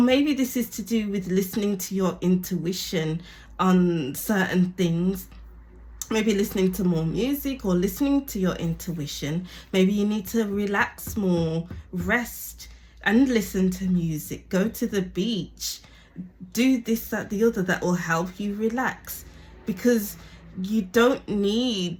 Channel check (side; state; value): both; identical; correlation 1.00